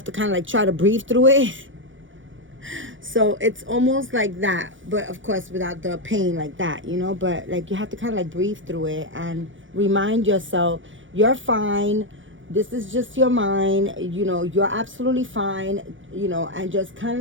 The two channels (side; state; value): left; late; 0.56 ms